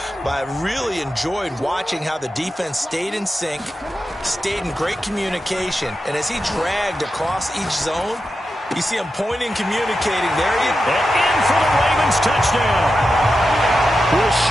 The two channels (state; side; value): normal; both; correlation 0.90